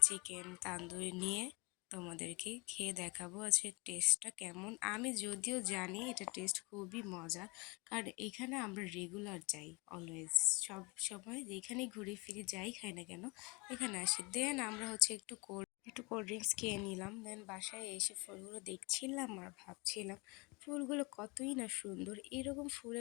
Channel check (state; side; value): quieter; right; 27.8 dB